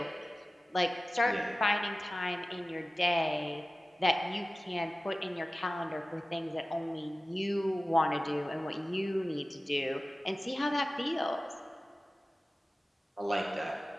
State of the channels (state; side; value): normal; both; correlation 0.97